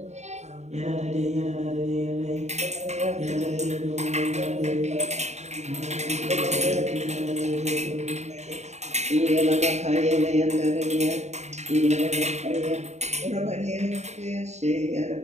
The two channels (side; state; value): left; late; 0.33 ms